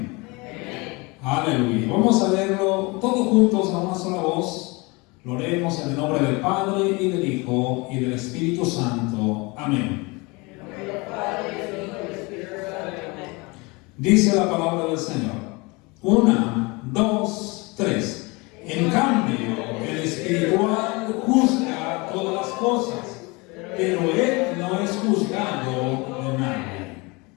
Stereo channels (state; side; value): quieter; right; 26.4 dB